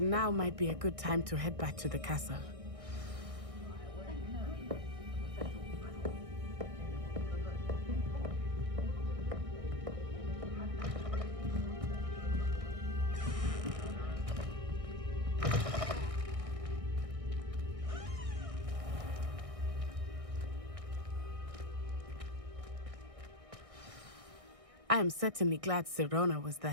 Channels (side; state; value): left; late; 1.6 ms